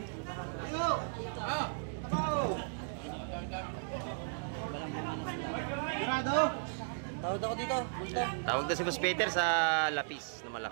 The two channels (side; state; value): left; silent; digital silence